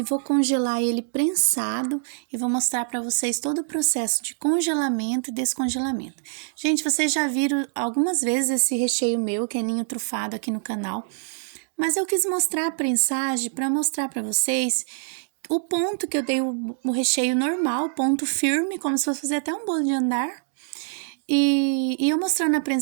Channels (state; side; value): silent; left; digital silence